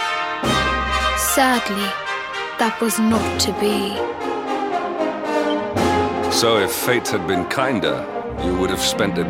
Sadly, that was not to be. So if fate had been kinder, you would have spent a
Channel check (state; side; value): identical; both; correlation 1.00